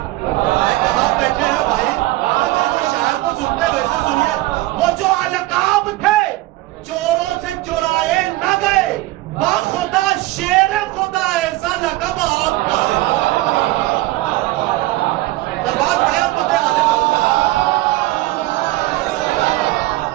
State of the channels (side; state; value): left; quieter; 18.3 dB